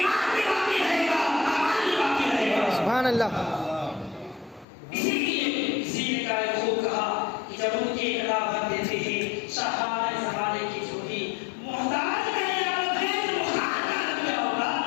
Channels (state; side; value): drops out; right; at 4.7 s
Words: بھی باقی رہے گا، عمل بھی باقی رہے گا. سبحان اللہ. اسی لیے کسی نے کہا خوب کہا کہ جب ان کے ایک دعوت دیتے ہیں شاہان زمانے کی جو بھی محتاج کا عیادت ہے تو محتاج کا عالم کیا ہوگا؟